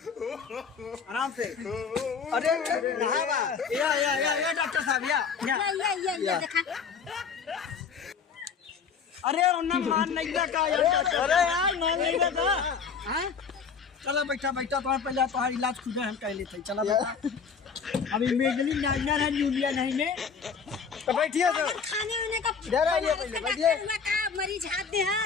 आराम से अरे या डॉक्टर साहब या ये देखा अरे उन्हें मान नहीं लगा अरे यार मान नहीं लगा हाँ चला बैठा तुम्हारे पहले तुम्हारा इलाज खुद हम कह लेते चला बैठा अभी मेडली नाइनर है जूलिया नहीं में तो बैठिए तो खाने वाने का इधर आइए पहले, बैठिए। का मरीज हाथ दे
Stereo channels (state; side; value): quieter; right; 6.0 dB